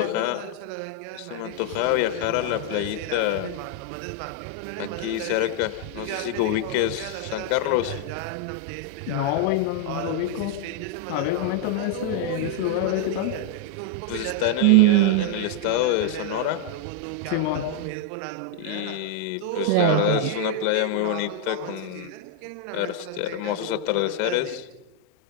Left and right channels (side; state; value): both; different; correlation 0.00